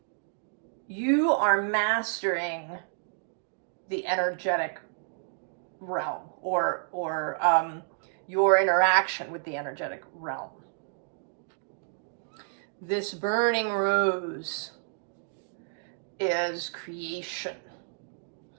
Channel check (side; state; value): left; silent; digital silence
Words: You are mastering the energetic realm or your interaction with the energetic realm. This burning rose is creation.